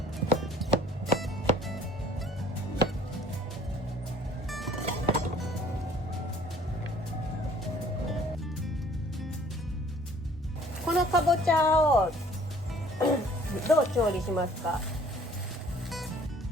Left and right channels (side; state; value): both; normal; correlation 0.55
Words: このかぼちゃをどう調理しますか？